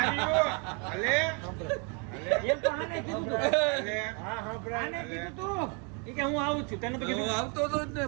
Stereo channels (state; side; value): quieter; left; 35.2 dB